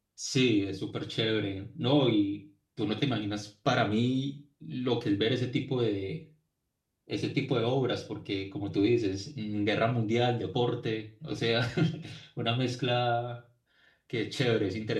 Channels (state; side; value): identical; both; correlation 1.00